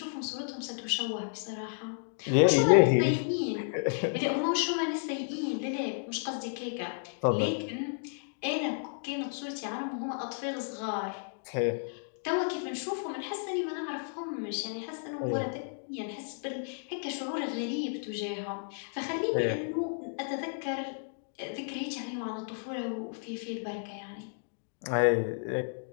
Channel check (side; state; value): right; silent; digital silence